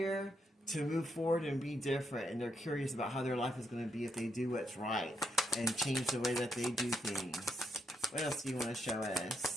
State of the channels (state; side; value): normal; both; correlation 0.78